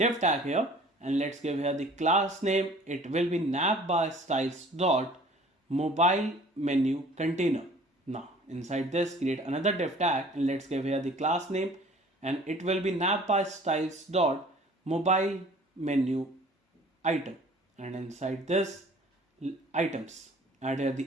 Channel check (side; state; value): both; normal; correlation 0.50